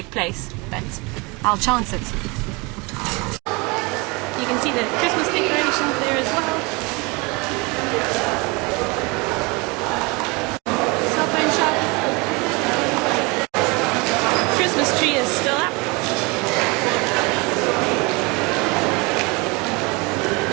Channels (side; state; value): left; quieter; 27.2 dB